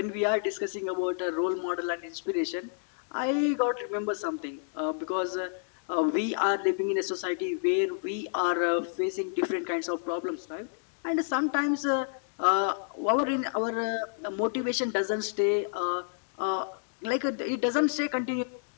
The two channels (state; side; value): silent; right; digital silence